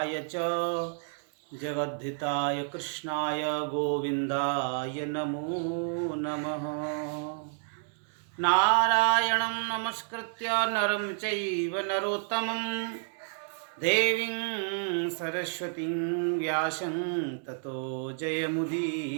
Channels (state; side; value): silent; left; digital silence